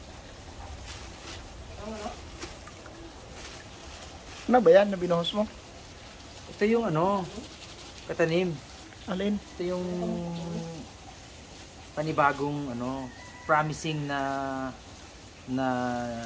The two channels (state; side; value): identical; both; correlation 1.00